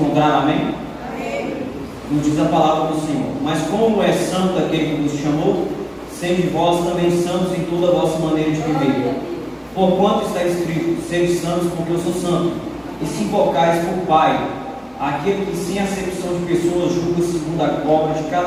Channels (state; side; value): identical; both; correlation 1.00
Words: amém? Nos diz a palavra do Senhor: mas como é santo aquele que vos chamou, sede vós também santos em toda a vossa maneira de viver. Porquanto está escrito: sede santos, porque eu sou santo. E se invocais por Pai, aquele que sem acepção de pessoas julga segundo a obra de